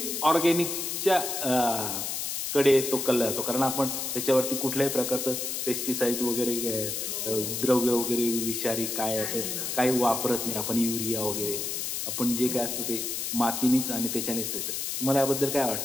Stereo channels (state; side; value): noise; left; hiss, 3 dB below the sound